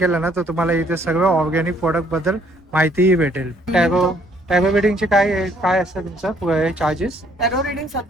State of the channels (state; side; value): normal; both; correlation 0.64